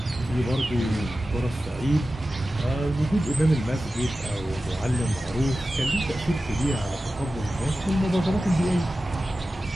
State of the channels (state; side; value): normal; both; correlation 0.94